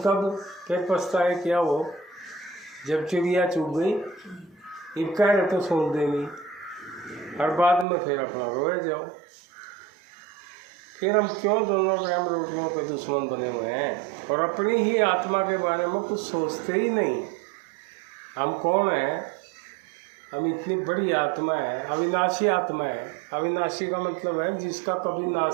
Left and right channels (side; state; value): left; drops out; at 7.9 s